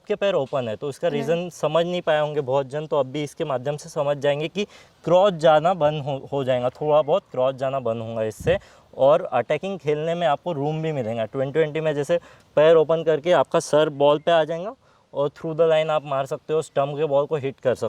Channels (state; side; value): identical; both; correlation 1.00